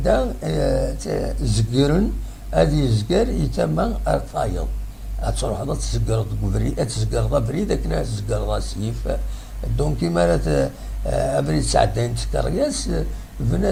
زقرن هذه زقر يتم ارتايض تروح هذا تزقر بريد تزقر بريد كنا تزقر سيف دونك كيما راه ابريد ساعتين تكرياس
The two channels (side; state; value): both; identical; correlation 1.00